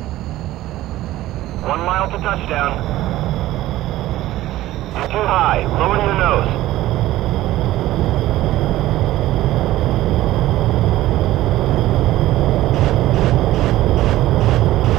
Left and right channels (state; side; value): quieter; left; 15.5 dB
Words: 1 mile to touchdown. You're too high. Lower your nose.